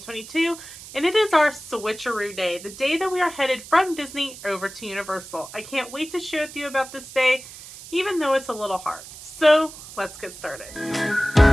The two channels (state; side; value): noise; right; hiss, 15 dB below the sound